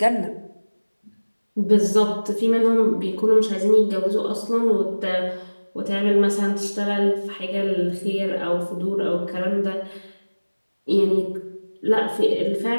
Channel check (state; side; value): inverted; both; correlation -1.00